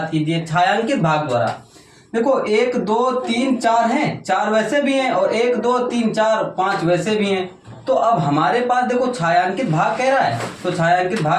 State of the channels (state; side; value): identical; both; correlation 1.00